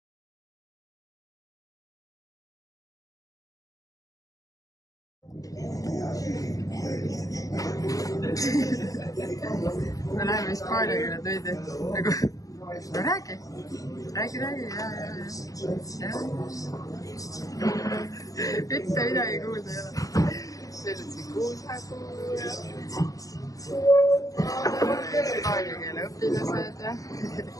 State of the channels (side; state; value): right; late; 0.17 ms